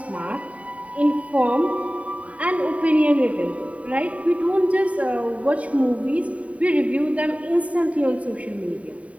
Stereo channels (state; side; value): late; left; 0.067 ms